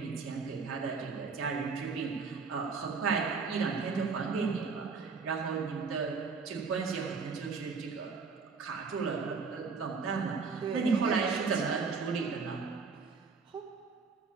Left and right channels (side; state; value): left; quieter; 4.9 dB